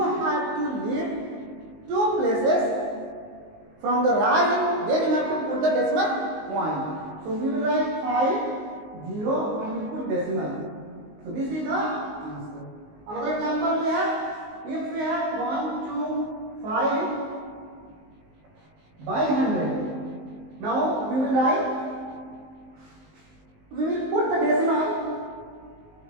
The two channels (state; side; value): late; left; 19 ms